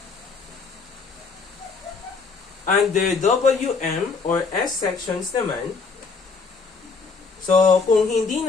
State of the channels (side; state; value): right; quieter; 4.7 dB